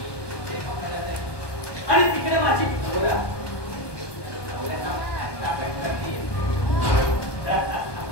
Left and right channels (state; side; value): late; right; 1.2 ms